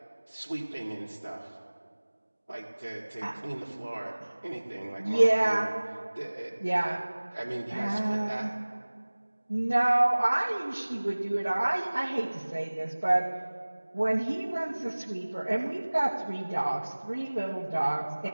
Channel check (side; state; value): both; inverted; correlation -1.00